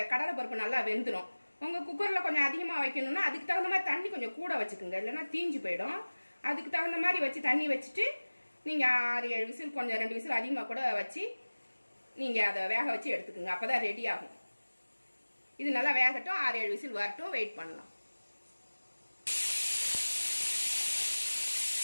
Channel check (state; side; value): inverted; both; correlation -1.00